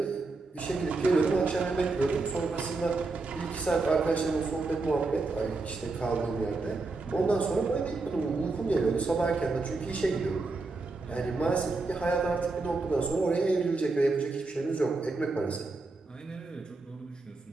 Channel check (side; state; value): left; quieter; 3.6 dB